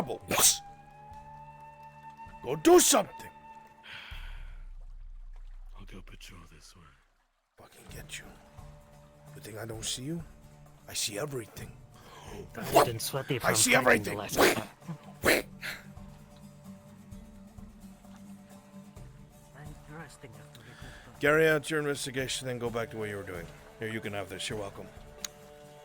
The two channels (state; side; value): identical; both; correlation 1.00